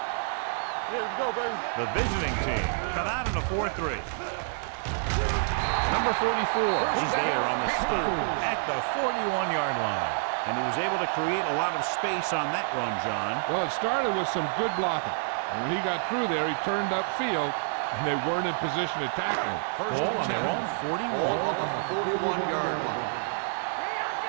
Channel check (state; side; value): silent; left; digital silence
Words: The visiting team come out in a 4-3. Number 44 is there on the stop at the 41-yard line. And he was able to create a lot of space on that run, John. Well, it started with some good blocking. And when he got through there, he turned upfield, and they weren't in position to tackle him. Ball on their own 41. Ball on the 41-yard line.